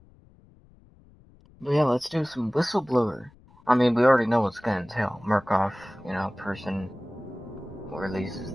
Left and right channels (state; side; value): noise; left; rumble, 27 dB below the sound